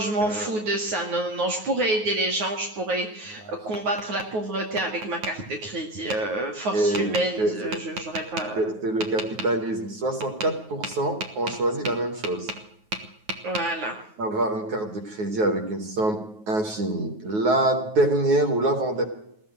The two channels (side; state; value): left; late; 9.4 ms